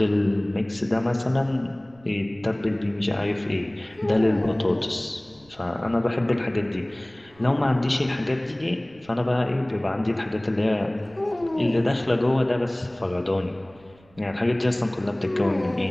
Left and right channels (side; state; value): right; noise; rumble, 28 dB below the sound